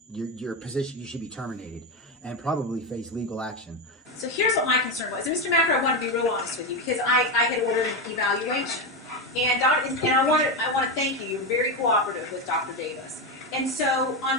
your position. You should be terminated and probably face legal action. So here's what my concern was. And Mr. Macker, I want to be real honest with you because I had ordered an evaluation, and I want to thank you. You're very cooperative with Dr. Davis. And so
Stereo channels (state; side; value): normal; both; correlation 0.12